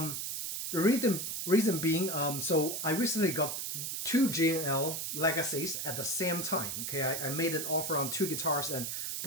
reason being, so I recently got two G&L Legacies at the same time. Okay, I made an offer on two guitars, and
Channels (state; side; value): noise; right; hiss, 3 dB below the sound